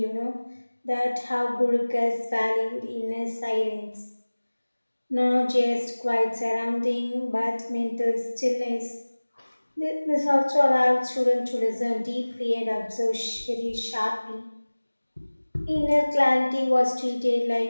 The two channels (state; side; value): inverted; both; correlation -1.00